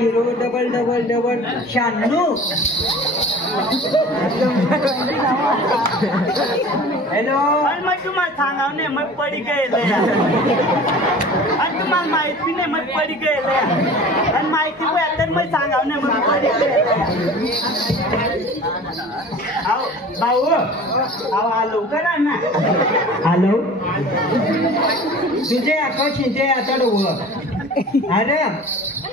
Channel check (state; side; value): normal; both; correlation 0.41